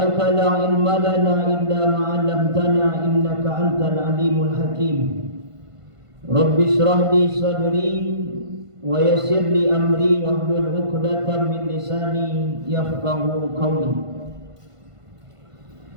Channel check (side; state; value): left; late; 1.5 ms